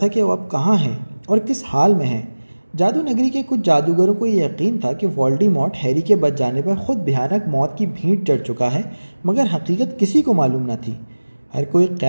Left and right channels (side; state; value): both; inverted; correlation -1.00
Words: کہ وہ اب کہاں ہے اور کس حال میں ہے۔ جادو نگری کے کچھ جادوگروں کو یہ یقین تھا کہ وولڈیمورٹ ہیری کے بچ جانے پر خود بھیانک موت کی بھینٹ چڑھ چکا ہے، مگر حقیقت کسی کو معلوم نہ تھی۔ ہر کوئی